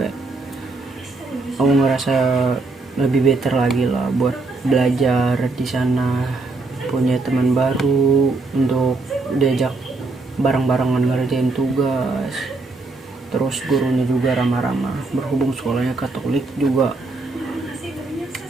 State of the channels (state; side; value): quieter; left; 3.5 dB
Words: aku ngerasa lebih better lagi lah buat belajar di sana, punya teman baru untuk diajak bareng-barengan ngerjain tugas. Terus gurunya juga ramah-ramah, berhubung sekolahnya Katolik juga